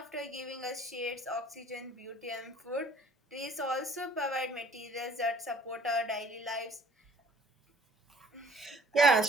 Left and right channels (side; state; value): both; normal; correlation 0.54